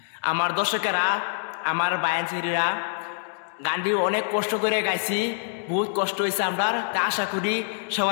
আমার দর্শকেরা, আমার বায়ানচিরা, গানটি অনেক কষ্ট করে গাইছি, বহুত কষ্ট হয়েছে আমার। তা আশা করি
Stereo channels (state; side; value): silent; right; digital silence